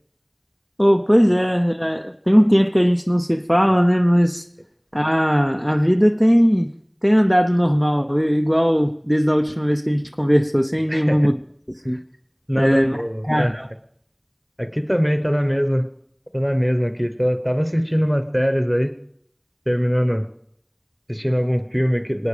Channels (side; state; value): both; identical; correlation 1.00